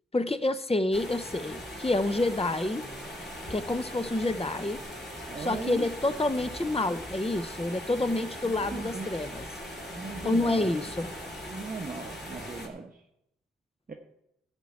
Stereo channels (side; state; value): both; normal; correlation 0.76